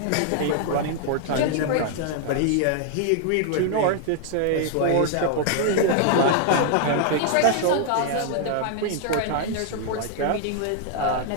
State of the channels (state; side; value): different; both; correlation 0.00